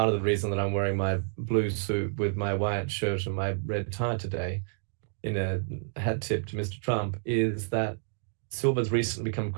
of the reason that I'm wearing my blue suit with my white shirt and my red tie today in a hat tip to Mr. Trump, is that silver's recently become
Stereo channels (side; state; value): left; silent; digital silence